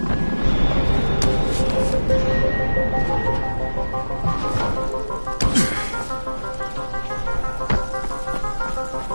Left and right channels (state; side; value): inverted; both; correlation -1.00